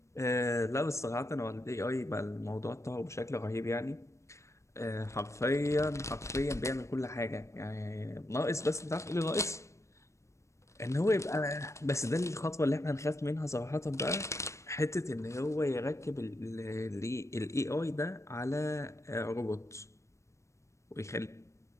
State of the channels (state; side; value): late; right; 0.14 ms